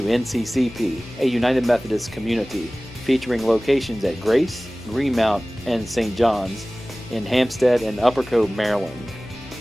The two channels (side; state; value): left; noise; hum, 19 dB below the sound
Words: NCCP, a United Methodist community featuring locations at Grace, Greenmount, and St. John's in Hampstead and Upper Cove, Maryland.